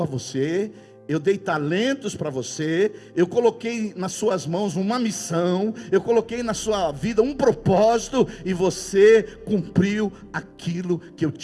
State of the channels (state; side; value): identical; both; correlation 1.00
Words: a você, eu dei talentos para você, eu coloquei nas suas mãos uma missão, eu coloquei na sua vida um propósito, e você cumpriu aquilo que eu